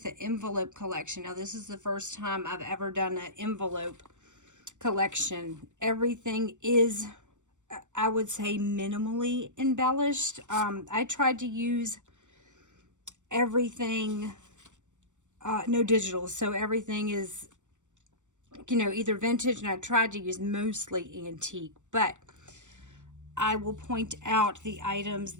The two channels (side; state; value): left; late; 0.85 ms